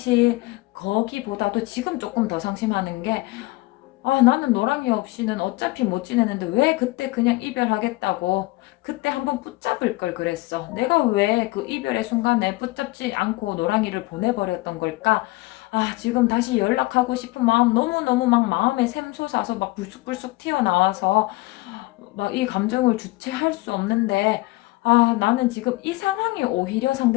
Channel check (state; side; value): quieter; right; 21.1 dB